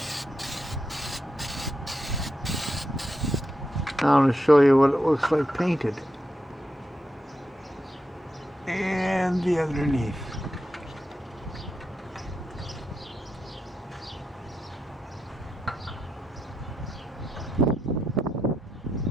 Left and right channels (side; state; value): both; normal; correlation 0.85